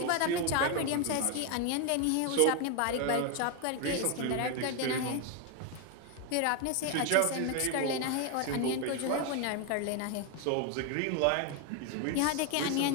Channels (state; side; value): different; both; correlation 0.01